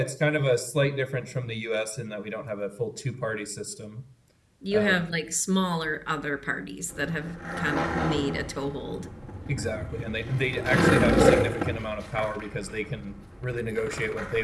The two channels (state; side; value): identical; both; correlation 1.00